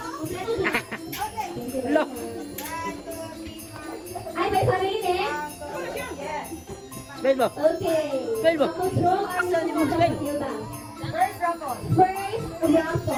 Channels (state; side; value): identical; both; correlation 1.00